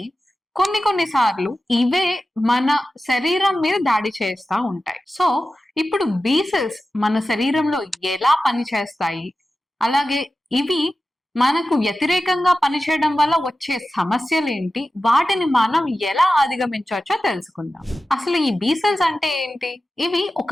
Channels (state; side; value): normal; both; correlation 0.94